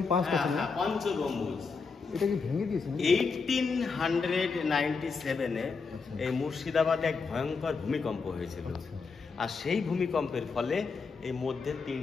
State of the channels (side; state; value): right; quieter; 4.8 dB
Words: 5টা ছিল, পঞ্চ গম্বুজ। এটা কি ভেঙে দিয়েছে? 1897-এ এই মুর্শিদাবাদে এক ভয়ঙ্কর ভূমিকম্প হয়েছিল, আর সেই ভূমিকম্পের ফলে এই মধ্যে